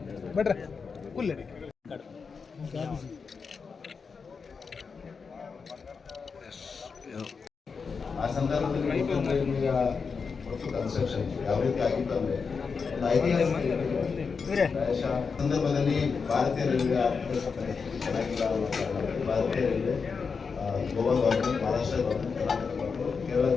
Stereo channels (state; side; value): quieter; right; 5.3 dB